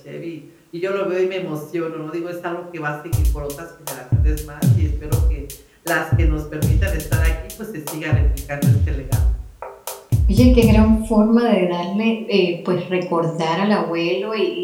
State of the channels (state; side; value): identical; both; correlation 1.00